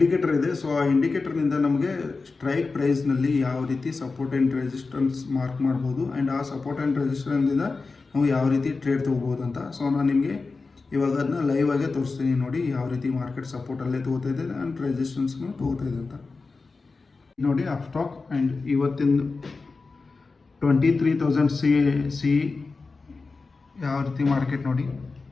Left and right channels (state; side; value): quieter; right; 4.1 dB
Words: ಇದೆ. ಸೊ ಆ ಇಂಡಿಕೇಟರ್ನಿಂದ ನಮಗೆ ಸ್ಟ್ರೈಕ್ ಪ್ರೈಸ್ನಲ್ಲಿ ಯಾವ ರೀತಿ ಸಪೋರ್ಟ್ ಆ್ಯಂಡ್ ರೆಸಿಸ್ಟೆನ್ಸ್ ಮಾರ್ಕ್ ಮಾಡ್ಬೋದು ಆ್ಯಂಡ್ ಆ ಸಪೋರ್ಟ್ ಆ್ಯಂಡ್ ರೆಸಿಸ್ಟೆನ್ಸಿಂದ ನಾವು ಯಾವ ರೀತಿ ಟ್ರೇಡ್ ತೊಗೋಬೋದು ಅಂತ. ಸೊ ನಾನು ನಿಮಗೆ ಇವಾಗ ಅದನ್ನ ಲೈವ್ ಆಗೇ ತೋರಿಸ್ತೀನಿ ನೋಡಿ, ಯಾವ ರೀತಿ ಮಾರ್ಕೆಟ್ ಸಪೋರ್ಟಲ್ಲೇ ತೊಗೋತಾ ಇದೆ ಆ್ಯಂಡ್ ರೆಸಿಸ್ಟೆನ್ಸ್ನು ತೊಗೋತಾ ಇದೆ ಅಂತ. ನೋಡಿ ಅಪ್ಸ್ಟಾಕ್ ಆ್ಯಂಡ್ ಇವತ್ತಿನ 23,000 ಸಿ ಯಾವ ರೀತಿ ಮಾರ್ಕೆಟ್ ನೋಡಿ.